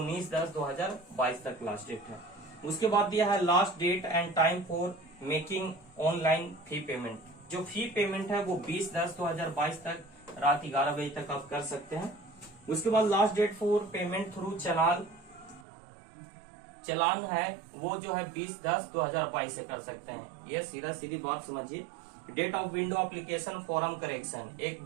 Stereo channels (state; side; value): drops out; left; at 15.7 s